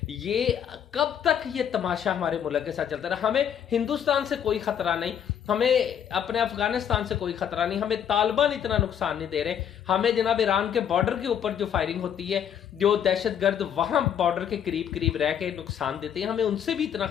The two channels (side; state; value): right; quieter; 8.9 dB